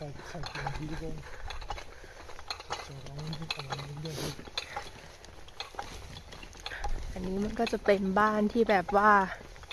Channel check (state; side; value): identical; both; correlation 1.00